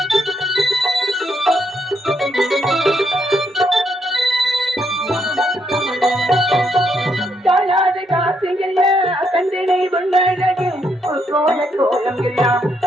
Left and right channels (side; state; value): both; normal; correlation 0.76